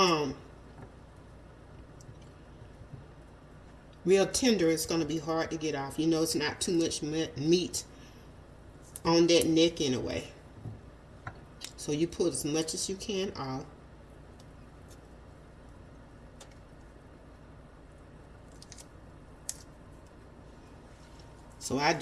real tender, it's going to be hard to get off. You know, it's not too much meat on that neck anyway. So you pull as much as you can off. So I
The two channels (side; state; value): both; identical; correlation 1.00